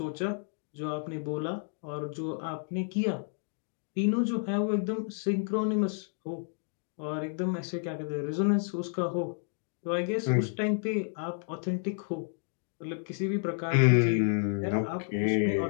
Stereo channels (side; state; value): right; silent; 57 dB below the other